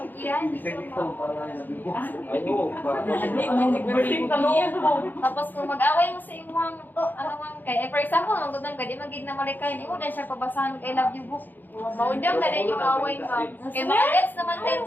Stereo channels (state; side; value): late; right; 0.088 ms